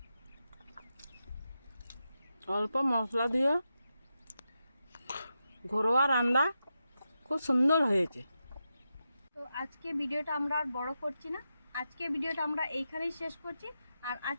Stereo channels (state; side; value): inverted; both; correlation -0.88